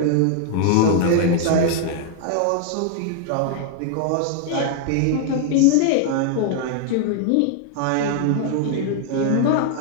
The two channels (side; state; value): both; different; correlation 0.00